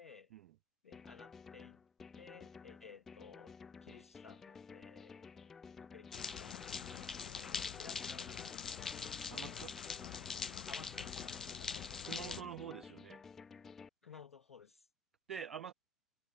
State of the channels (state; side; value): quieter; right; 3.8 dB